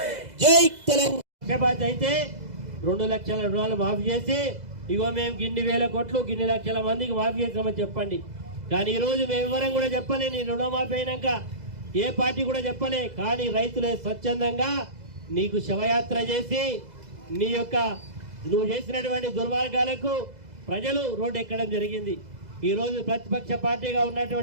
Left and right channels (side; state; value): left; late; 2.0 ms